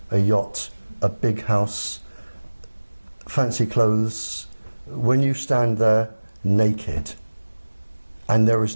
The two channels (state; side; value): inverted; both; correlation -1.00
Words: a yacht, a big house, fancy clothes, when you stand there naked and there is